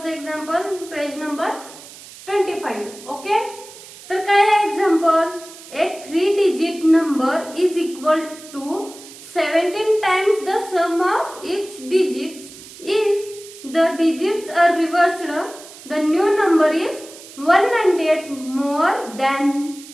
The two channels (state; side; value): noise; right; hiss, 18 dB below the sound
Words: एक्झाम्पल पेज नंबर 25. ओके, तर काय आहे example? A 3-digit number is equal to 17 times the sum of its digits. If the digits are reversed, the new number is 198 more than